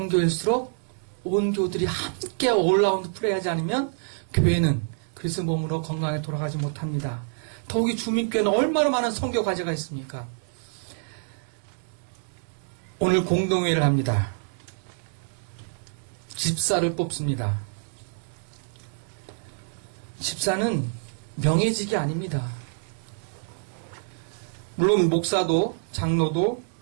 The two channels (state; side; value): silent; left; 60 dB below the other